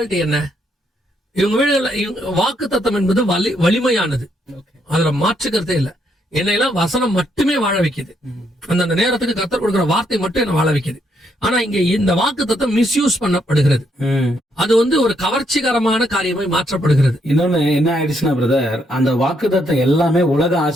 என்ன, இவங்க வீடுகள்ல வாக்குத்தத்தம் என்பது வலிமையானது, அதுல மாற்றுக்கிறதே இல்ல. என்னையெல்லாம் வசனம் மட்டுமே வாழ வைக்குது, அந்த நேரத்துக்கு கர்த்தர் கொடுக்கிற வார்த்தை மட்டும் என்ன வாழ வைக்குது. ஆனா இங்க இந்த வாக்குத்தத்தம் மிஸ்யூஸ் பண்ணப்படுகிறது, அது ஒரு கவர்ச்சிகரமான காரியமாய் மாற்றப்படுகிறது. இன்னொன்னு என்ன ஆயிடுச்சுன்னா பிரதர், அந்த வாக்குத்தத்தம் எல்லாமே உலக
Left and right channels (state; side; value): normal; both; correlation 0.75